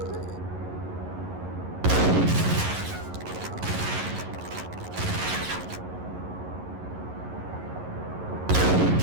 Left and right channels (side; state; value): left; late; 11 ms